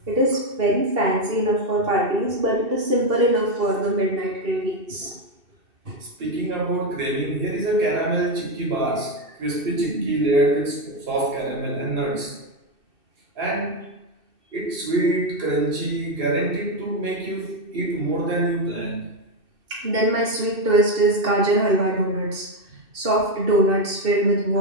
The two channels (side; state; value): left; late; 2.6 ms